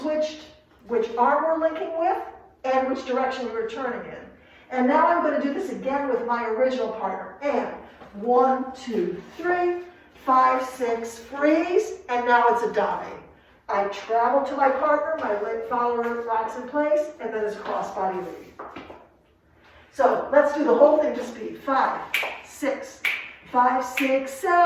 which arm we're linking with and which direction we were turning in. And now I'm going to do this again with my original partner. And 1, 2, 3, 5, 6, freeze, and now it's a dame. I travel to my partner, my leg follower rocks in place, and then it's cross-body lead. So let's do the whole thing to speed. 5, 6, 5, 6,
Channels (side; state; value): both; identical; correlation 1.00